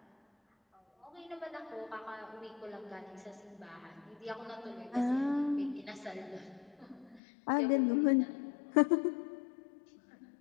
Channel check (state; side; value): drops out; right; at 7.2 s